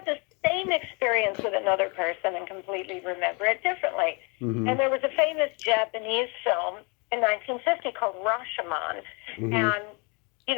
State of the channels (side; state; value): right; quieter; 32.3 dB